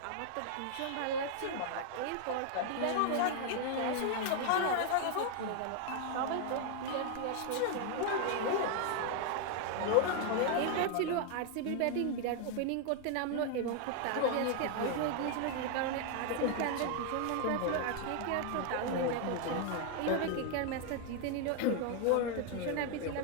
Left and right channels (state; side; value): different; both; correlation 0.00